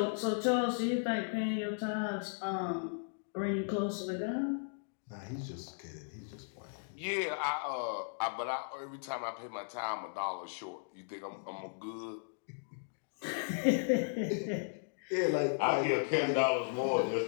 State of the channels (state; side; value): silent; right; digital silence